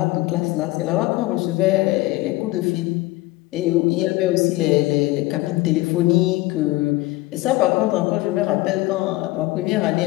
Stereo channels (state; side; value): quieter; right; 19.5 dB